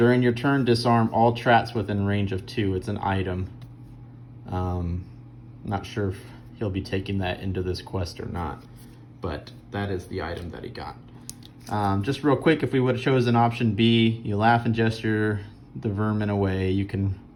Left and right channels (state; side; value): identical; both; correlation 1.00